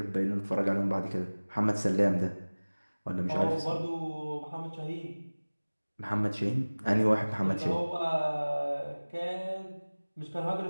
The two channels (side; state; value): both; inverted; correlation -1.00